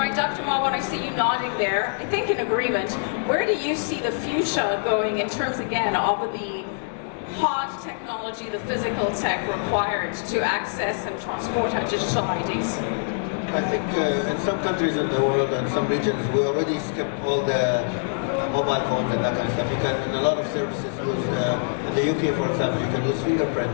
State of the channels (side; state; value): right; silent; digital silence